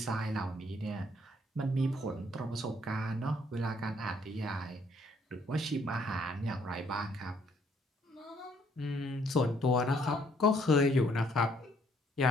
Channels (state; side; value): normal; both; correlation 0.66